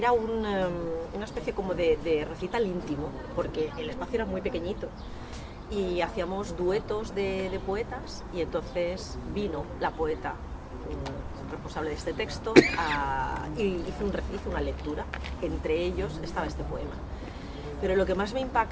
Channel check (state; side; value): identical; both; correlation 1.00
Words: una especie como de recital íntimo, porque el espacio era muy pequeñito, y hacíamos duetos de poetas, y entonces vino la poeta responsable de este texto y hizo una lectura, entre ellos estaba este poema. Pero lo que más me